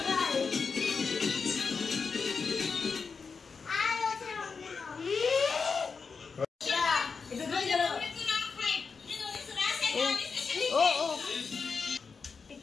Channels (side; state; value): right; quieter; 5.2 dB